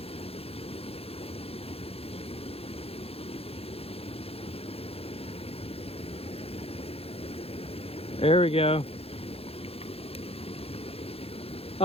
There we go.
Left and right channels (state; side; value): late; right; 0.28 ms